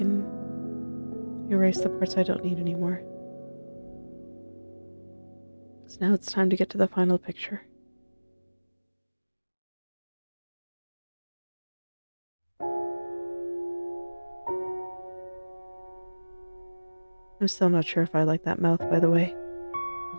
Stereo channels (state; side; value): inverted; both; correlation -1.00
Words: erase the parts I don't need anymore. So now it's time to get to the final picture. I'm still not sure if I like that mouth, by the way. I've